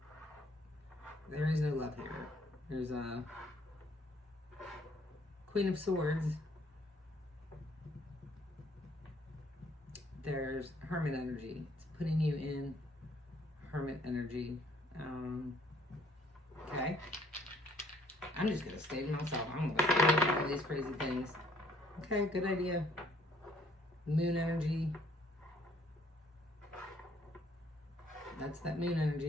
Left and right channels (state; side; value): normal; both; correlation 0.64